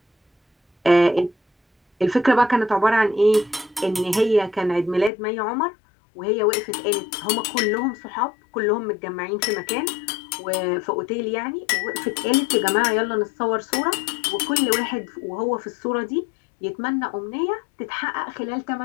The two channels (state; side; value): drops out; right; at 5.1 s